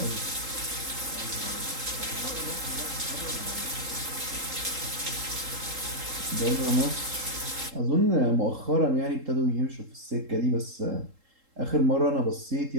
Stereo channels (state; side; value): late; left; 3.7 ms